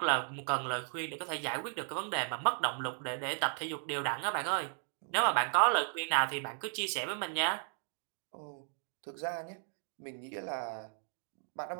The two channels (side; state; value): left; silent; 54 dB below the other